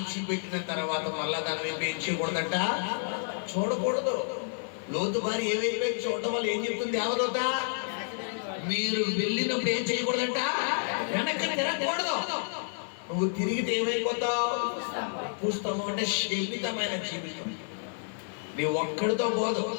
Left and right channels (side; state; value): right; silent; 58 dB below the other